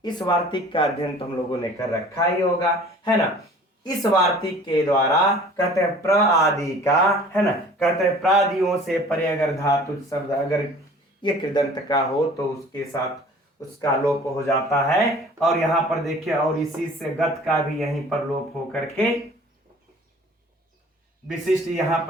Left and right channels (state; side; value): normal; both; correlation 0.48